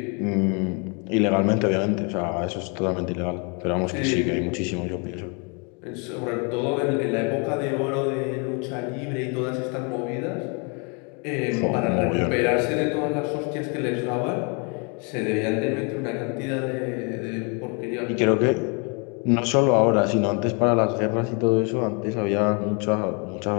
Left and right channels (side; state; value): right; quieter; 34.5 dB